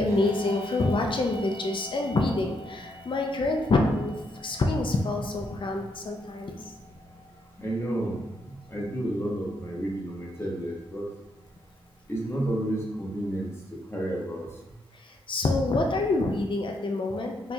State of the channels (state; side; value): normal; both; correlation 0.77